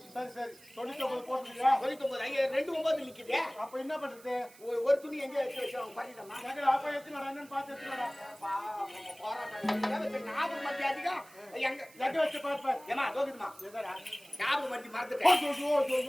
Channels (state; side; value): noise; right; hiss, 23 dB below the sound